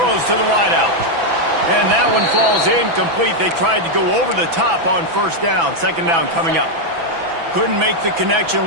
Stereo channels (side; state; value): left; late; 6.0 ms